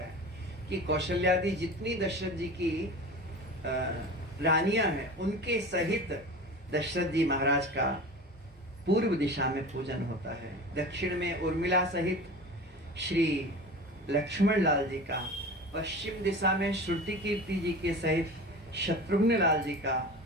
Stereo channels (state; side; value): normal; both; correlation 0.34